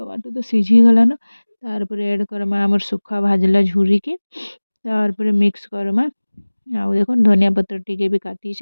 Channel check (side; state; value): both; inverted; correlation -1.00